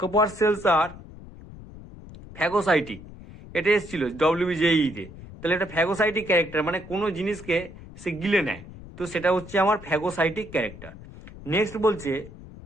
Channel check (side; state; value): left; noise; rumble, 16 dB below the sound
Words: কপার সেলস আর ফ্যাগোসাইটিক, এটা এসেছিল ডব্লিউবিজেইতে। তাহলে এটা ফ্যাগোসাইটিক ক্যারেক্টার, মানে কোনো জিনিসকে সে গিলে নেয়, তো সেটা হচ্ছে আমার ফ্যাগোসাইটিক ক্যারেক্টার। নেক্সট বলছে